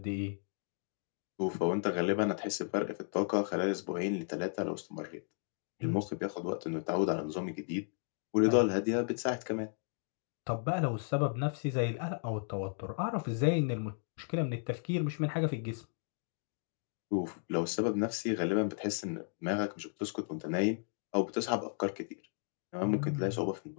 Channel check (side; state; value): right; silent; 55 dB below the other